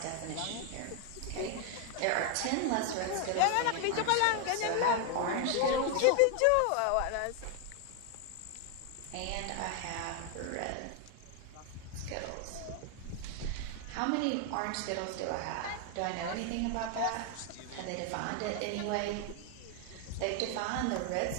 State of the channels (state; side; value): different; both; correlation 0.00